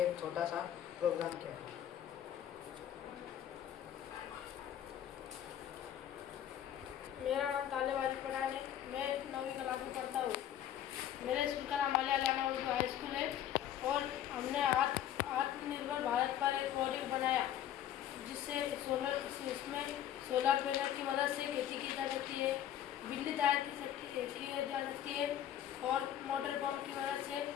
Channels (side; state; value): right; quieter; 10.9 dB